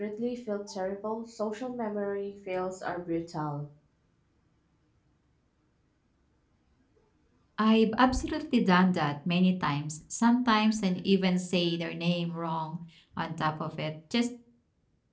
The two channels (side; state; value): both; identical; correlation 1.00